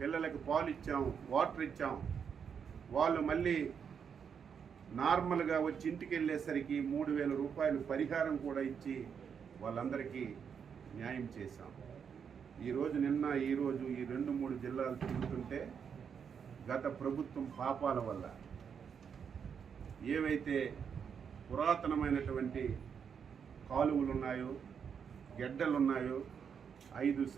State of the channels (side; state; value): left; quieter; 7.1 dB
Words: పాలు ఇచ్చాం, వాటర్ ఇచ్చాం, వాళ్ళు మళ్ళీ నార్మల్గా వచ్చి ఇంటికి వెళ్ళేసరికి 3,000 రూపాయలు పరిహారం కూడా ఇచ్చి వాళ్ళందరికీ న్యాయం చేశాం. ఈరోజు ఈ 2-3 జిల్లాలు తిరుగుతుంటే గత ప్రభుత్వం పాపాల వల్ల ఏవైతే పురాతనమైనటువంటి కాలువలు ఉన్నాయో, గెడ్డలు ఉన్నాయో 5